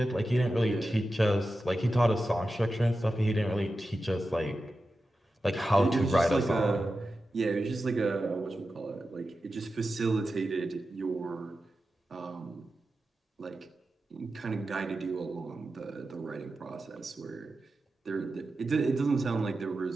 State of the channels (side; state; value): both; normal; correlation 0.92